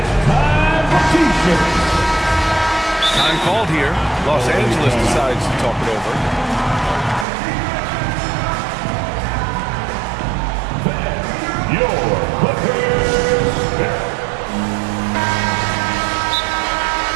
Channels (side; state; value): left; drops out; at 7.2 s